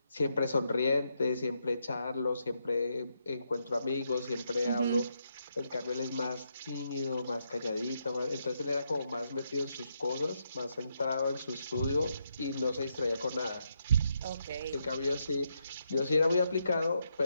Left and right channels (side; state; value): both; inverted; correlation -0.80